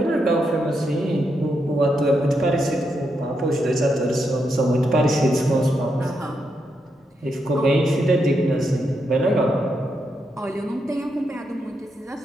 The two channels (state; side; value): normal; both; correlation 0.82